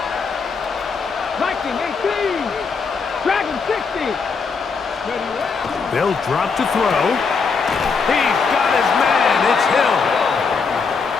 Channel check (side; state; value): right; quieter; 5.1 dB